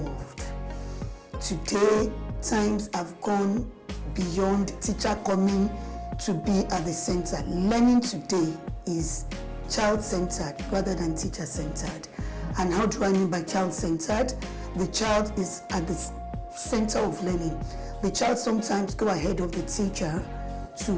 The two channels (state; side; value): identical; both; correlation 1.00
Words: Today, times have gone beyond teacher coming to be at the center. Learning today is child-centered rather than teacher-centered. And how do I mean by child-centered? The child is at the center of learning. The child sometimes go ahead of the teacher to